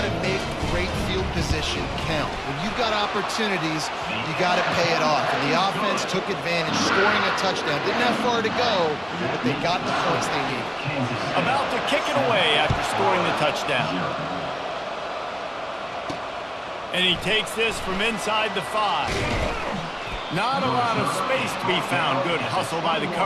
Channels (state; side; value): identical; both; correlation 1.00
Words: to make great field position count. When you've got opportunities, you got to pay it off. And the offense took advantage, scoring a touchdown. Didn't have far to go, but they got the points they needed. About to kick it away after scoring the touchdown. And he takes this from inside the 5. Not a lot of space to be found. Good hustle by the